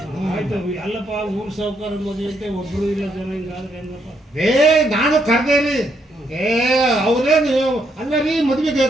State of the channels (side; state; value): both; normal; correlation 0.75